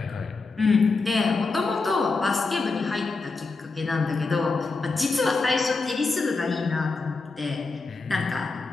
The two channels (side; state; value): right; quieter; 3.9 dB